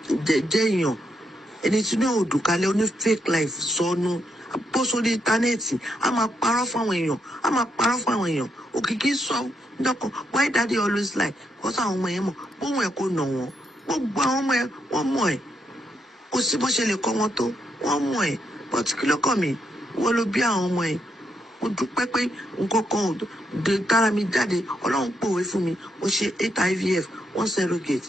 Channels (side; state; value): both; normal; correlation 0.79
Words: jẹ́ èèyàn. Ẹni tí ní òdùkalẹ̀ oní fake life sọnù. Bó sórí íńtánẹ́ẹ̀tì a máa parọ́ fún àwọn èèyàn. Òkìkí sọ dọ́kan why daddy always lie because àwọn ọmọ yẹn mọ̀ bóun ẹ̀ kò nà wọ́n. Gbogbo àwọn ọmọ ẹ̀ wọ́n mọ̀ ẹ̀. Kò sí bó ṣe lè kọ́ wọn tó wọ́n mọ̀ ẹ̀. But kí ló kàn mí? Wọ́n ló bí àwọn ọmọ ẹ̀. Mo dúpẹ́ pé nǹkan kan ò dé tára mi jáde. Ọlọ́run pòwe fún mi. Mo ṣe 8 IVF 1 surrogate.